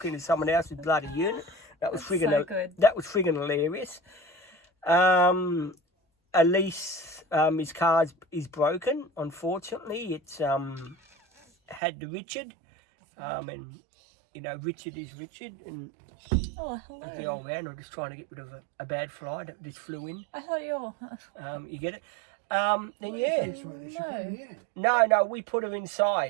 into someone else's bloody unit. That was friggin' hilarious. Elise, his car is broken. Unfortunately, it's had the Richard, and you know Richard is Richard, and hello. the old man. I'm just trying to get rid of a bad fly that just flew in. I thought you were... You get it? Then yeah. No, we put her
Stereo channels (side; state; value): left; drops out; at 11.8 s